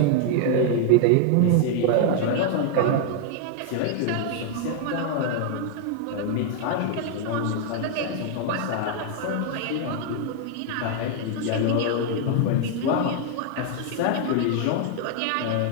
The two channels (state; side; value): different; both; correlation 0.00